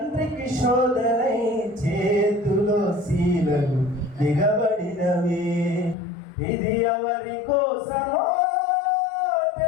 శోధనై చేతులో శీలలు దిగబడినవి. ఇది ఎవరి కోసమో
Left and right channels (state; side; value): drops out; right; at 6.0 s